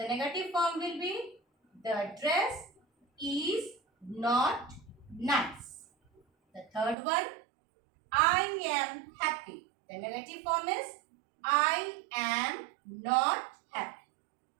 negative form will be the dress is not nice. The third one. I am happy. The negative form is I am not happy.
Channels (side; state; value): left; drops out; at 7.0 s